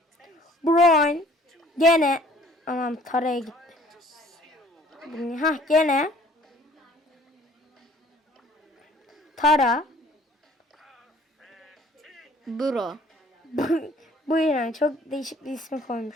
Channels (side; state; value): both; normal; correlation 0.55